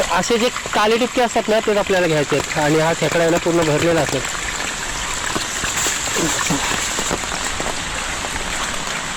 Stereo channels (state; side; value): identical; both; correlation 1.00